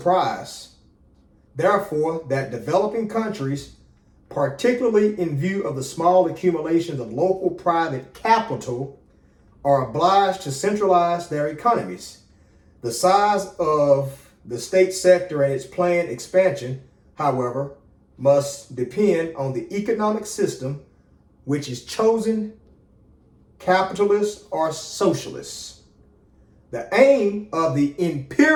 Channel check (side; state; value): both; identical; correlation 1.00